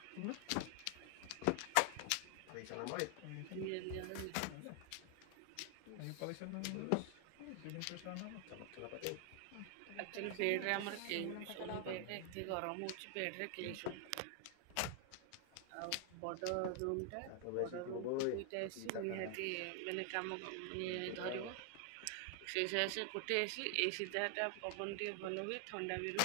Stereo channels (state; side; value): different; both; correlation 0.00